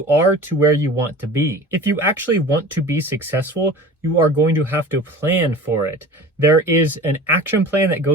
are to where you want to be. If you actually want to be successful, you are going to have to plan for it. There is an action plan that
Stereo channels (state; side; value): normal; both; correlation 0.39